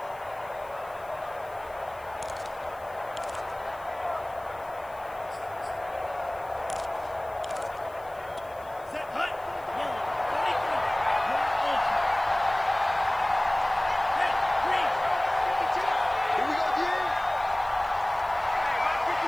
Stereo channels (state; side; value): noise; left; hiss, 25 dB below the sound